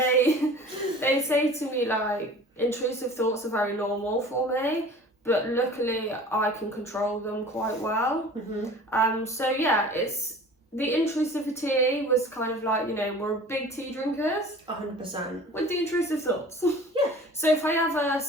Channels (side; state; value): both; normal; correlation 0.43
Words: They say to me like, intrusive thoughts are very normal for me, but luckily I can control them quite well. So yeah, it's the intrusivity was kind of like, you know, we're big tea drinkers. 100%. With the intrusive thoughts. Yeah. So if I ever